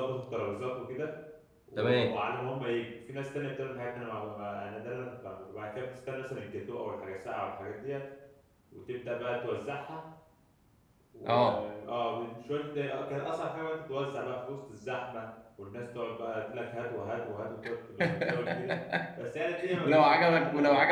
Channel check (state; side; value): identical; both; correlation 1.00